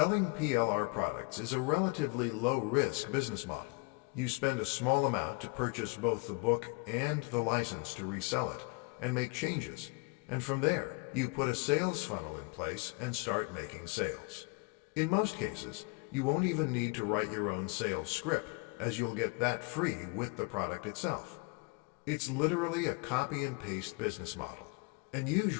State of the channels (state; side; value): quieter; right; 29.1 dB